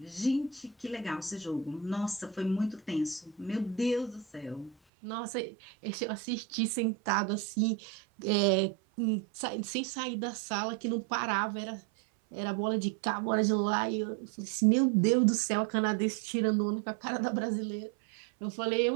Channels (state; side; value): drops out; left; at 4.8 s